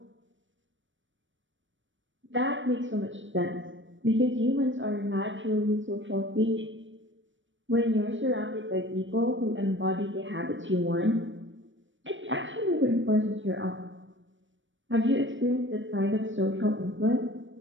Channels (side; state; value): left; late; 0.56 ms